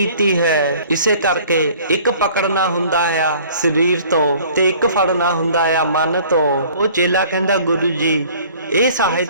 ਹੈ। ਇਸੇ ਕਰਕੇ ਇੱਕ ਪਕੜਨਾ ਹੁੰਦਾ ਆ ਸਰੀਰ ਤੋਂ ਤੇ ਇੱਕ ਫੜਨਾ ਹੁੰਦਾ ਆ ਮਨ ਤੋਂ। ਉਹ ਚੇਲਾ ਕਹਿੰਦਾ ਗੁਰੂ ਜੀ ਇਹ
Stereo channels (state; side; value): inverted; both; correlation -0.51